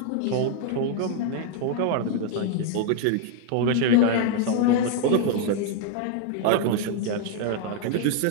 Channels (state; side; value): different; both; correlation 0.01